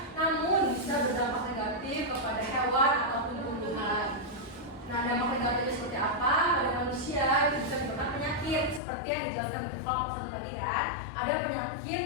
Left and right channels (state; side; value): drops out; right; at 8.8 s